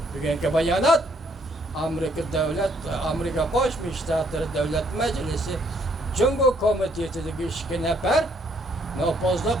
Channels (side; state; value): both; normal; correlation 0.68